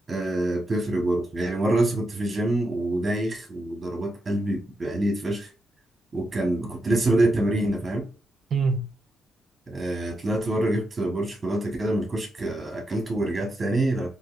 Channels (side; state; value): both; normal; correlation 0.85